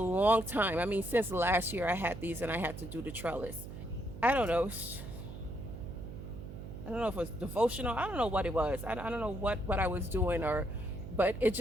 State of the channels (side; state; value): right; noise; hum, 10 dB below the sound